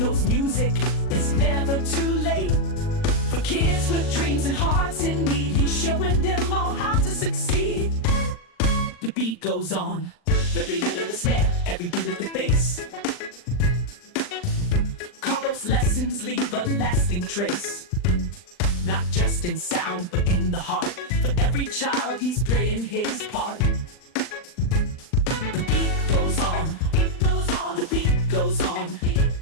music is never too late. For kids with dreams and hearts in need, he's showing them all how to succeed. The beat goes on. Every hit of the snare, every beat of the bass. Carlos' lessons leave a lasting trace, not just in sound, but in the heart. For every child, he's playing his part. The beat goes on. The beat goes on. The beat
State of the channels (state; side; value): late; right; 39 ms